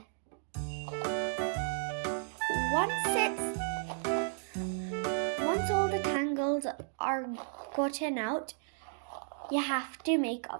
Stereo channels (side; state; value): left; silent; digital silence